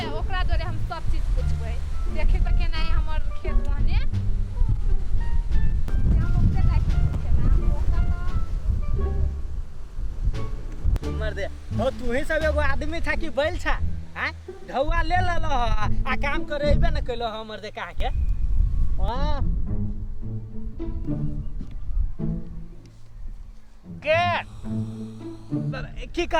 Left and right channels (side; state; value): both; identical; correlation 1.00